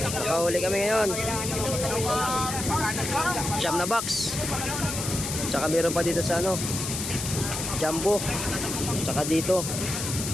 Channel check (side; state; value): left; noise; hiss, 4 dB below the sound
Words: Nakahuli kami ngayon. Siyam na box. Tsaka meron pa dito sa ano, Jumbo. Tsaka dito